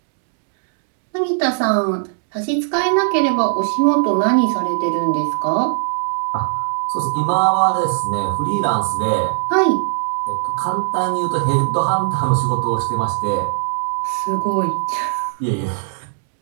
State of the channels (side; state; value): left; silent; digital silence